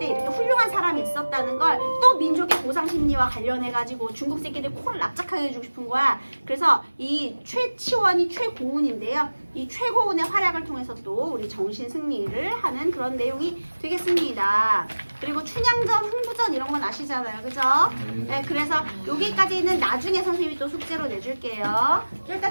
이렇게 훌륭한 사람이 있었다는 걸 또 민족의 보상 심리와 관련해가지고 중국 새끼들 코를 납작하게 해주고 싶은 거야. 그래서 이 최치원이 최고운인데요. 이 최고운의 활약을 통해서 또 우리 정신 승리를 하는 그런 내용이 되겠습니다. 그리고 춘향전, 흥부전 이런 건 아시잖아요, 그죠? 네, 그래서 여기까지는 나중에 선생님이 또 숙제로 내줄게요. 일단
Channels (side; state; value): both; inverted; correlation -1.00